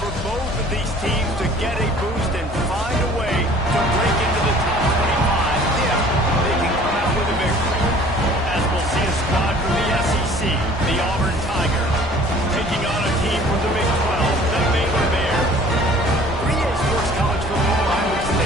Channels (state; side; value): normal; both; correlation 0.51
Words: both of these teams to get a boost and find a way to break into the top 25 if they can come out with a victory. As we'll see a squad from the SEC, the Auburn Tigers, taking on a team from the Big 12, the Baylor Bears. 3A Sports College Football, I'm Luke